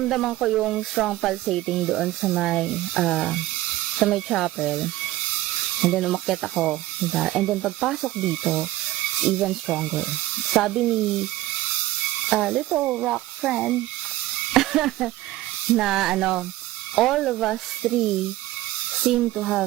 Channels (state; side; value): quieter; left; 16.3 dB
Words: ko yung strong pulsating doon sa may chapel. And then, umakyat ako. And then, pagpasok dito, it's even stronger. Sabi ni Little Rock Friend na all of us three seem to